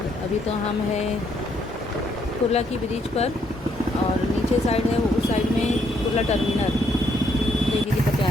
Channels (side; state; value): both; normal; correlation 0.72